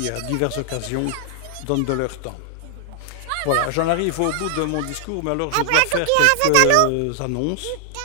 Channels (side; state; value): both; different; correlation 0.00